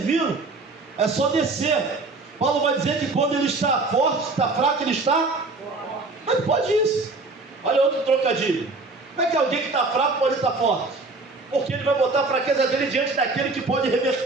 É só descer. Paulo vai dizer que quando ele está forte, está fraco, ele está... Mas pode isso. Olha outro trocadilho. Como é que alguém que está fraco pode estar forte? Porque ele vai botar a fraqueza dele diante daquele que pode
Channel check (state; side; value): quieter; left; 3.5 dB